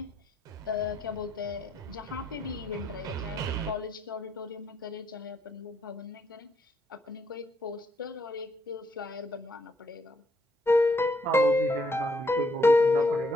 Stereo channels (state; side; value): normal; both; correlation 0.73